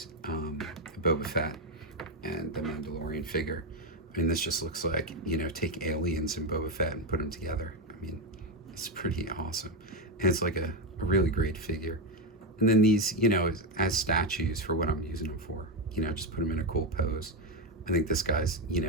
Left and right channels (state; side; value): normal; both; correlation 0.09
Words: Boba Fett and the Mandalorian figure. I mean, this just looks like, you know, take aliens and Boba Fett and put them together. I mean, it's pretty awesome. And it's like a really great figure. And then these, you know, as statues for what I'm using them for, you know, just put them in a cool pose. I think this guy's, you